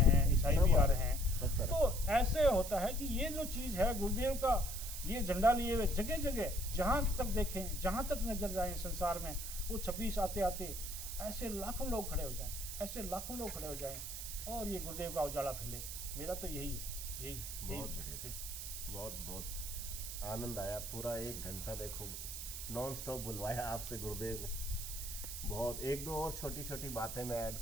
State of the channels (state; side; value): noise; right; hiss, 7 dB below the sound